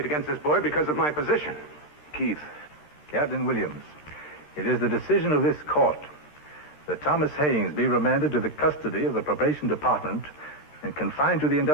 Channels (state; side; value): late; right; 13 ms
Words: against this boy because of my position. Keith. Captain Williams, it is the decision of this court that Thomas Haynes be remanded to the custody of the probation department and confined to the